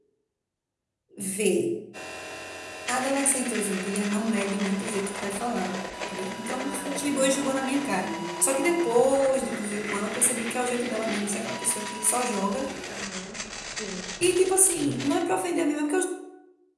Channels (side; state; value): both; identical; correlation 1.00